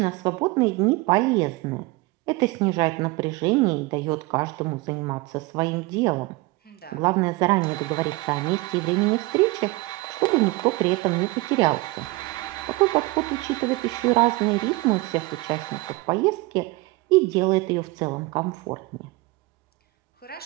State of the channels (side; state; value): left; quieter; 22.6 dB